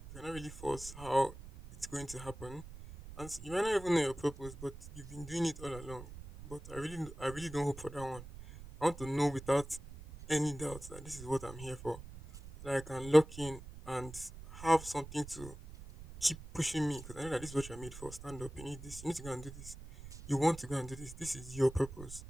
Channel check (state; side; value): noise; right; rumble, 14 dB below the sound